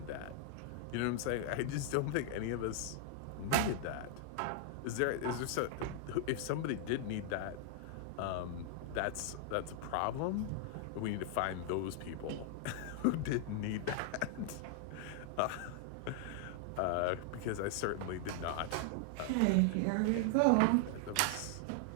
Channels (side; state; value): both; different; correlation 0.00